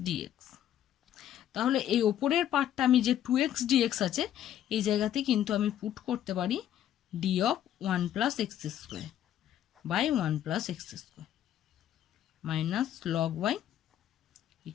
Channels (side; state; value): right; quieter; 11.1 dB